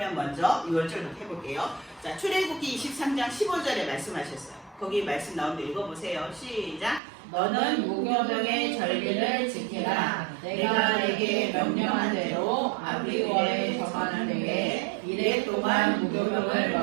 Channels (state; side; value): drops out; left; at 7.0 s